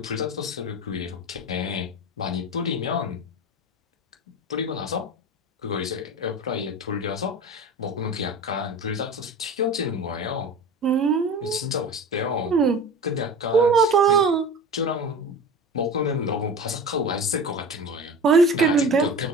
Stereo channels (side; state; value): both; normal; correlation 0.33